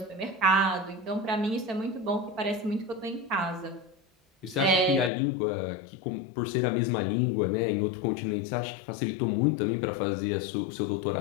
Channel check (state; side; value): drops out; right; at 5.1 s